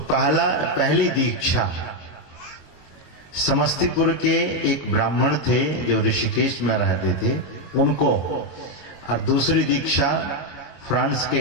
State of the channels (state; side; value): late; right; 22 ms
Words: पहली दीक्षा समस्तीपुर के एक ब्राह्मण थे जो ऋषिकेश में रहते थे उनको, और दूसरी दीक्षा फ्रांस के